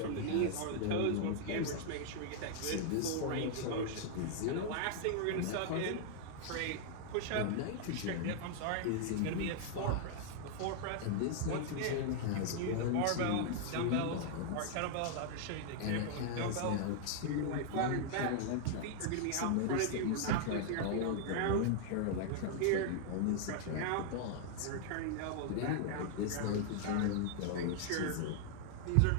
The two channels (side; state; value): both; different; correlation -0.01